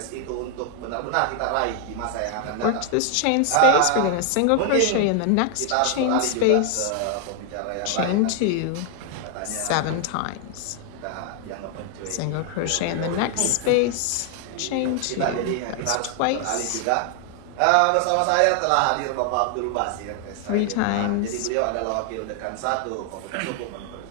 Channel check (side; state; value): both; different; correlation 0.00